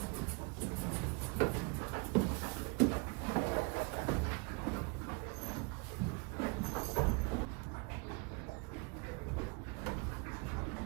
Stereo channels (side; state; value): left; quieter; 31.6 dB